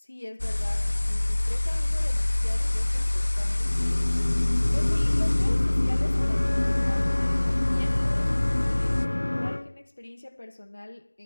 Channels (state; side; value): inverted; both; correlation -1.00